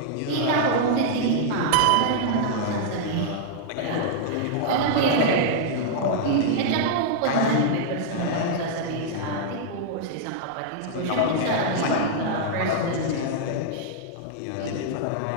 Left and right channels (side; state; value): both; different; correlation -0.01